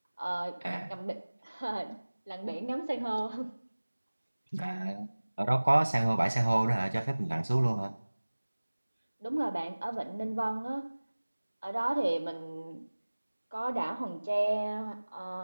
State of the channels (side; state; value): both; inverted; correlation -1.00